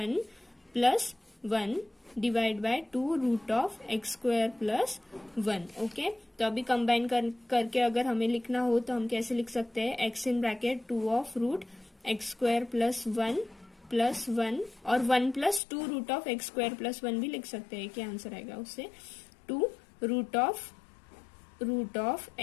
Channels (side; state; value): right; drops out; at 15.6 s